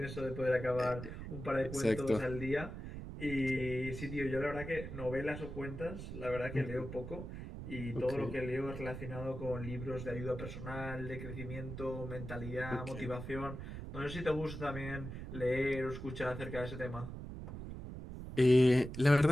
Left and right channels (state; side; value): noise; right; rumble, 8 dB below the sound